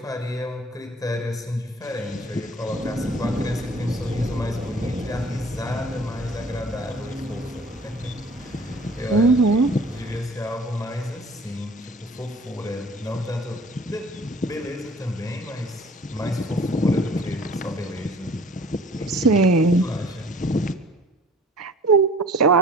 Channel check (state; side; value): normal; both; correlation 0.49